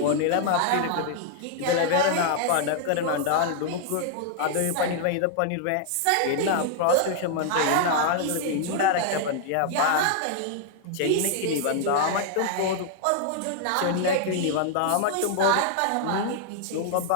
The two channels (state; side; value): different; both; correlation 0.00